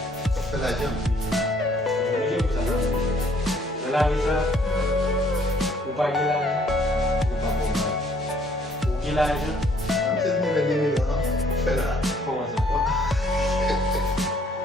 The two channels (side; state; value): both; normal; correlation 0.63